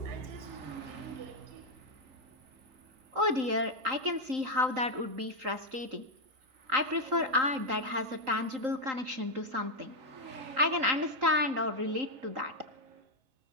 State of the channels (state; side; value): late; left; 3.8 ms